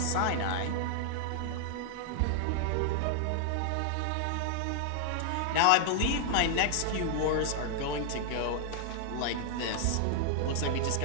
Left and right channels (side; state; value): both; different; correlation 0.00